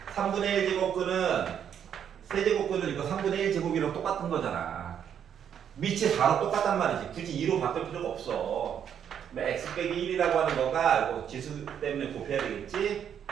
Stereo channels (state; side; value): quieter; left; 8.7 dB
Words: 3분의 1 제곱근은 세제곱근은 이거 3분의 1 제곱이랑 똑같은 거잖아. 밑이 4로 똑같단 말이지. 굳이 2로 바꿀 필요가 없어. x 빼기 1이라고 하는 거가 이거 지수 때문에 곱해야 되겠지?